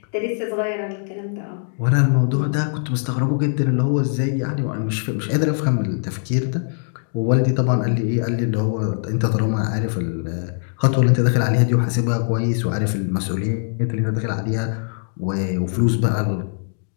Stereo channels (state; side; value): silent; right; 65 dB below the other